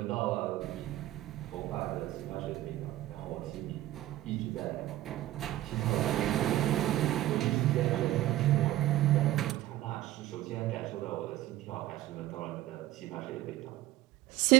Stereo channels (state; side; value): quieter; left; 14.8 dB